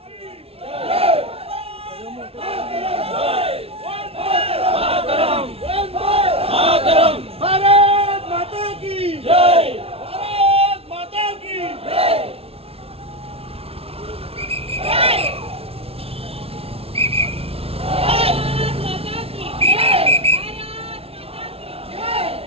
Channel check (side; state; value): left; late; 0.28 ms